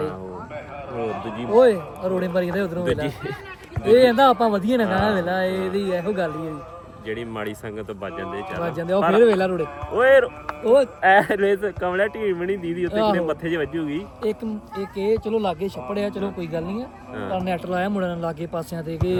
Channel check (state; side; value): identical; both; correlation 1.00